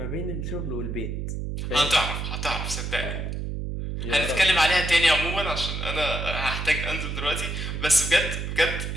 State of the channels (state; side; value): noise; right; hum, 4 dB below the sound